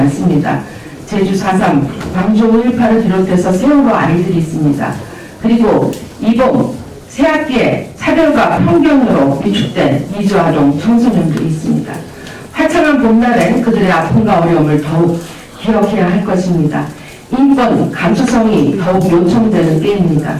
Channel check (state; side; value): identical; both; correlation 1.00